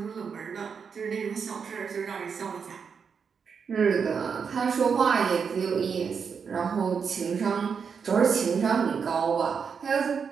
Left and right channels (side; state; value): left; quieter; 6.2 dB